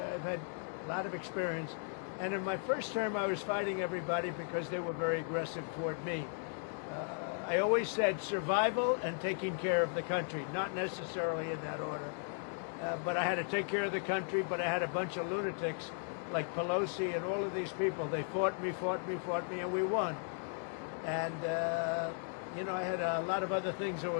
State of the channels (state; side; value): silent; right; 54 dB below the other